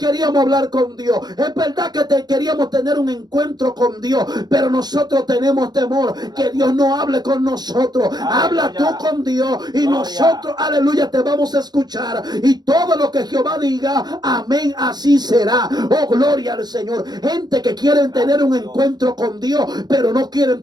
hablar con Dios, es verdad que queríamos tener un encuentro con Dios, pero nosotros tenemos temor que Dios no hable con nosotros. Habla tú con Dios y nosotros, aleluya, te vamos a escuchar. Y todo lo que Jehová diga, amén, así será. Oh, gloria al Señor. Gente que quieren tener un encuentro con Dios, pero no quieren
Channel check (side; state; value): left; late; 0.20 ms